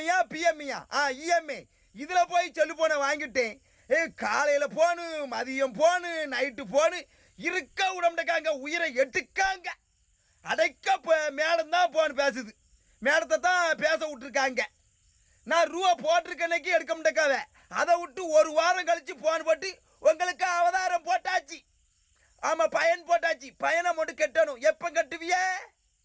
பிஎம்ஐயா இஎம்ஐ இதில் போய் செல்லு போனை வாங்கிட்டேன். காலையில் போனு, மதியம் போனு, நைட்டு போனு, இருக்க விடமாட்டேக்காங்க, உயிரை எடுக்காங்க. அடைக்க மேடம் தான் போன் பேசுது, மேடத்தை தான் பேச விட்டுருக்காங்க. நான் ரூபா போட்டிருக்கன்னைக்கு எடுக்க மாட்டேக்காவ, அதை விட்டு ஒரு வாரம் கழிச்சு போன் போட்டு உங்களுக்கு அவதாரம் போட்டாச்சு. ஆமாம், பயன் போட்டாச்சு. பயனை மட்டும் கட்டணும். எப்போ கட்டுவிய?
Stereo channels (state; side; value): identical; both; correlation 1.00